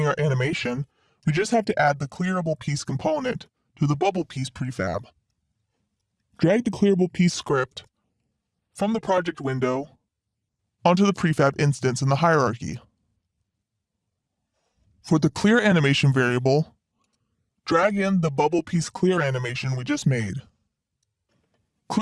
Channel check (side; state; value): both; identical; correlation 1.00